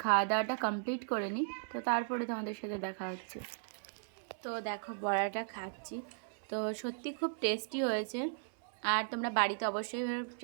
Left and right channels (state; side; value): silent; left; 53 dB below the other